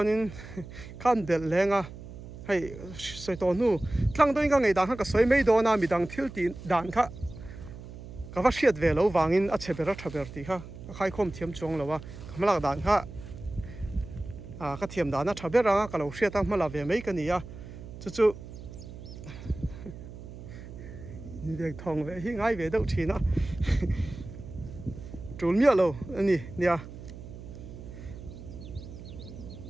khan del lenga hei soi to nu tlang doin ka ngei dan kha ka soi mei do na mi dang thil ti dan kha ka va hriat ve lo wangin a chebera thaber ti kha khai khom thiam chuang lowa kamlak dan kha ka thiam dana thabera ka lo hriat a hmala ve mei ka ni a chu việc thòng về hi ngay về đâu chỉ nó trốn miệng lâu anh nè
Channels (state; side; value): noise; right; hum, 13 dB below the sound